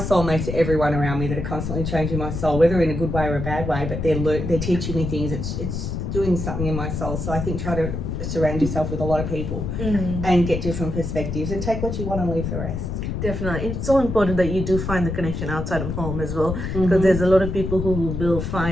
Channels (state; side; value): noise; left; rumble, 4 dB below the sound